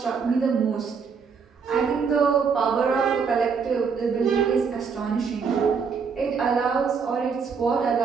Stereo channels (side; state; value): left; quieter; 5.8 dB